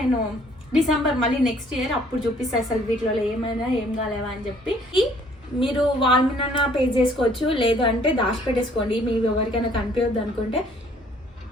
డిసెంబర్ మళ్ళీ నెక్స్ట్ ఇయర్ అప్పుడు చూపిస్తాను అసలు వీటిలో ఏమైనా ఏం కాలేవా అని చెప్పి. మీరు వాళ్ళ మీద పే చేసుకోవచ్చు, లేదు అంటే దాచిపెట్టేసుకోండి. మీకు ఎవరికైనా కనిపించద్దు అనుకుంటే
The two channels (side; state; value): both; normal; correlation 0.60